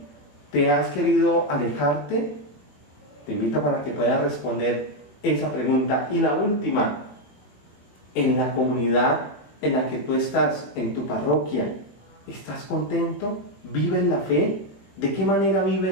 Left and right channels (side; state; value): right; late; 20 ms